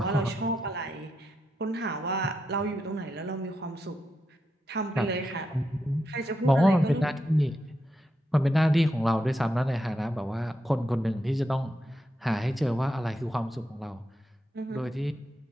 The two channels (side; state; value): both; normal; correlation 0.84